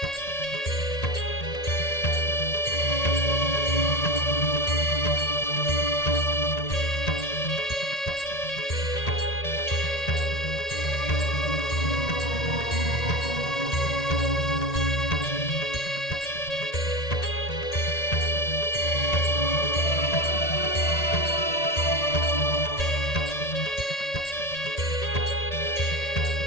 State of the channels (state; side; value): late; right; 1.8 ms